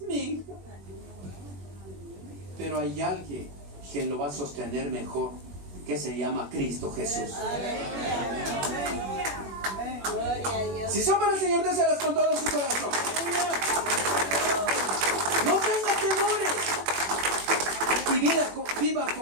Mi hija. Pero hay alguien que lo va a sostener mejor, que se llama Cristo Jesús. Si son para el Señor, déselas con todo su corazón. No tenga temores. Y viva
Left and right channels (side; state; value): left; late; 21 ms